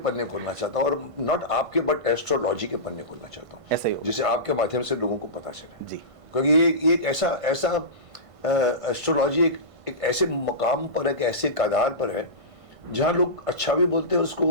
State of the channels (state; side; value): late; left; 1.5 ms